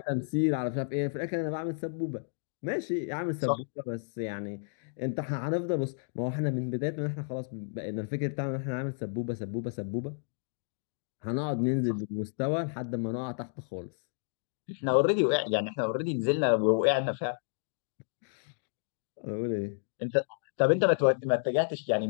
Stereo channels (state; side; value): silent; right; digital silence